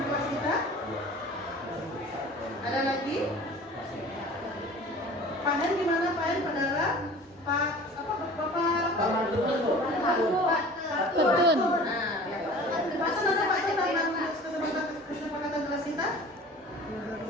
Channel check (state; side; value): normal; both; correlation 0.43